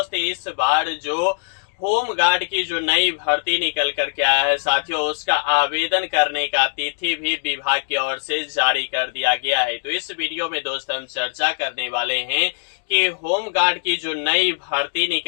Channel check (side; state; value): right; silent; digital silence